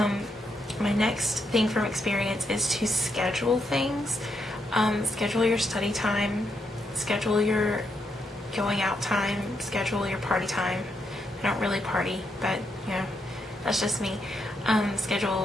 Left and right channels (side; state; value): both; normal; correlation 0.80